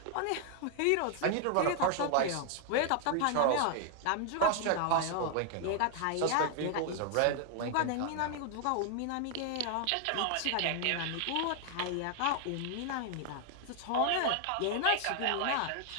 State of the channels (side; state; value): both; different; correlation 0.00